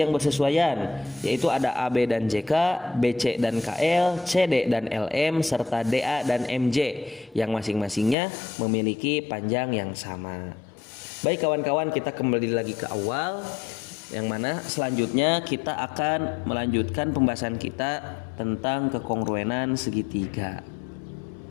yang bersesuaian, yaitu ada AB dan JK, BC dan KL, CD dan LM, serta DA dan MJ, yang masing-masingnya memiliki panjang yang sama. Baik kawan-kawan, kita kembali lagi ke awal, yang mana selanjutnya kita akan melanjutkan pembahasan kita tentang kekongruenan segitiga.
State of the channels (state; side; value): drops out; right; at 8.2 s